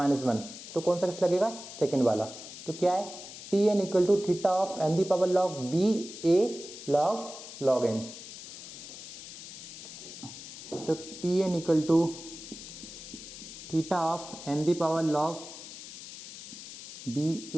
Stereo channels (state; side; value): noise; left; hiss, 13 dB below the sound